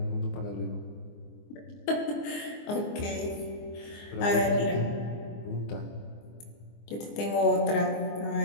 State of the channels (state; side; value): late; right; 24 ms